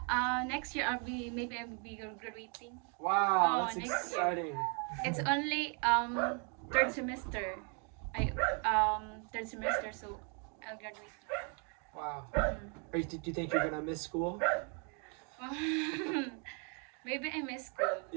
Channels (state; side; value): quieter; left; 38.3 dB